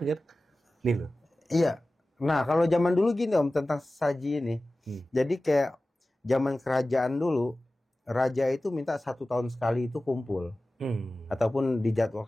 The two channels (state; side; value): normal; both; correlation 0.96